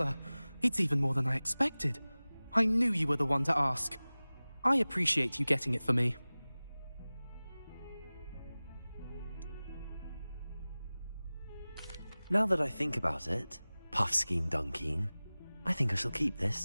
It's even more than I expected. I knew you were the one to ask. I appreciate you getting it for me. Now that I think about it, Puffskein Dunkeen, I think I shall keep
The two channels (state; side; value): inverted; both; correlation -0.98